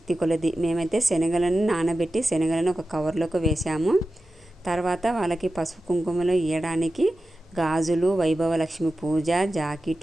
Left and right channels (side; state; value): both; normal; correlation 0.93